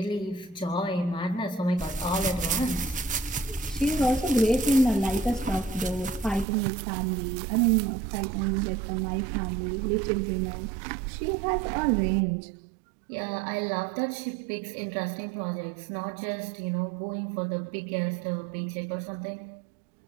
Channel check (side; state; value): left; drops out; at 6.5 s